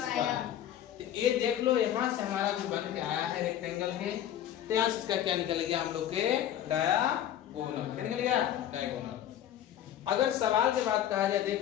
तो ये देख लो यहाँ से हमारा जो बन के आया है रेक्टेंगल है, तो यहाँ से इसका क्या निकल गया, हम लोग के डायगोनल, क्या निकल गया, डायगोनल। अगर सवाल की बात कहा जाए,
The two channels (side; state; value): right; quieter; 11.1 dB